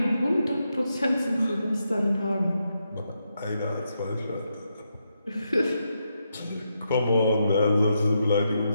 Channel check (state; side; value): inverted; both; correlation -0.83